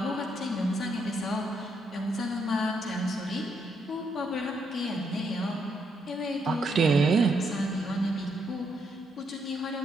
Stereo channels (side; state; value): both; normal; correlation 0.76